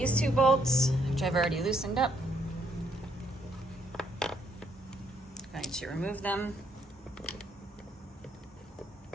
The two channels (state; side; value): normal; both; correlation 0.70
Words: two bolts, which I've already loosened up. I'm going to remove them.